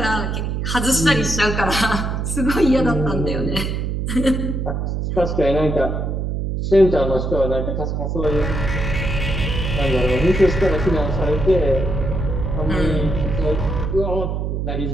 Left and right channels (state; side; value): noise; right; hum, 1 dB below the sound